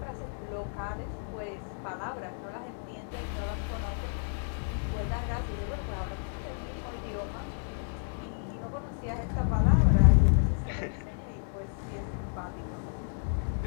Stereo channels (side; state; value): right; silent; digital silence